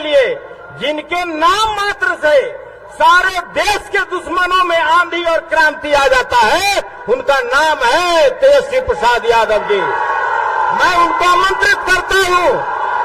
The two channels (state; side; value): identical; both; correlation 1.00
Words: जिनके नाम मात्र से सारे देश के दुश्मनों में आंधी और क्रांति आ जाता है, उनका नाम है तेजस्वी प्रसाद यादव जी। मैं उनको आमंत्रित करता हूं,